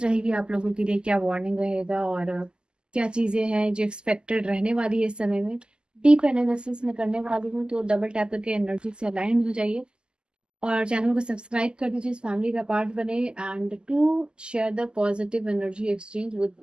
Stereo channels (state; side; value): late; left; 0.048 ms